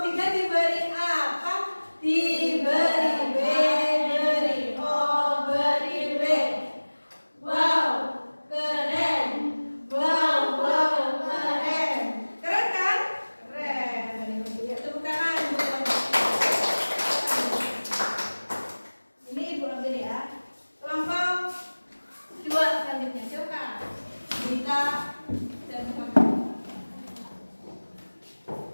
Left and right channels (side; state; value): both; inverted; correlation -1.00